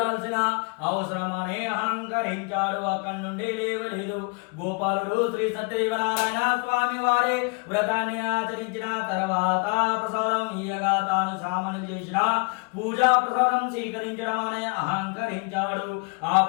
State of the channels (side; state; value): right; quieter; 32.9 dB